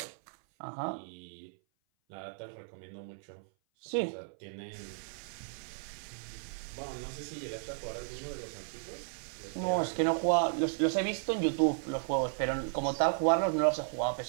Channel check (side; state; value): left; silent; 55 dB below the other